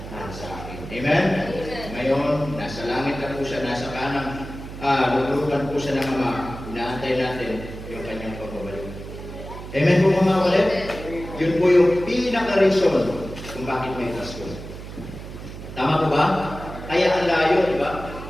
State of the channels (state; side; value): noise; right; hum, 11 dB below the sound